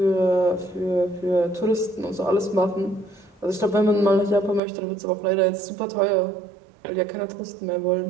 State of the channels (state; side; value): drops out; left; at 4.6 s